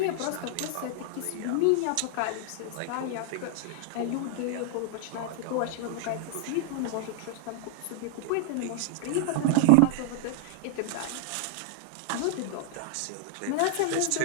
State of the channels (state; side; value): different; both; correlation -0.01